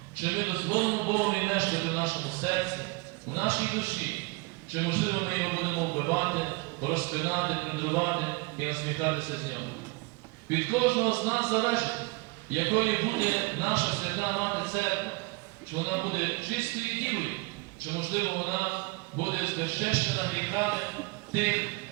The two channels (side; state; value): left; quieter; 26.2 dB